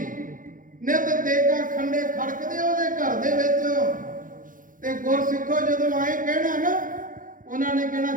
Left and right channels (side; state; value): left; late; 0.39 ms